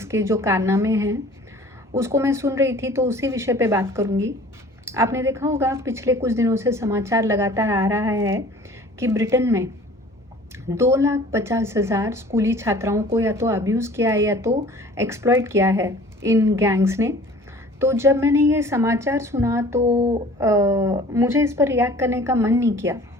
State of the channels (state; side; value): normal; both; correlation 0.48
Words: के जो कारनामे हैं उसको मैं सुन रही थी, तो उसी विषय पे बात करूँगी। आपने देखा होगा पिछले कुछ दिनों से समाचार लगातार आ रहा है कि ब्रिटेन में 2,50,000 स्कूली छात्राओं को या तो अब्यूज़ किया है या तो एक्सप्लॉइट किया है इन गैंग्स ने। तो जब मैंने ये समाचार सुना तो मुझे इस पर रिएक्ट करने का मन नहीं किया,